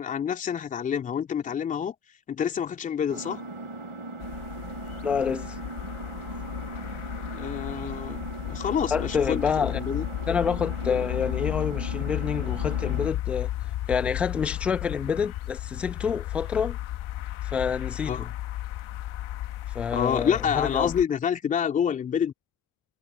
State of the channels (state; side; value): quieter; right; 7.2 dB